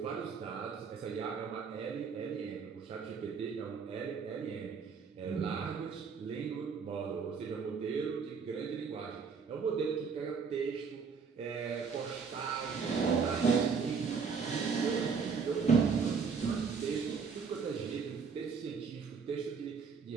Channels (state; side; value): quieter; left; 5.7 dB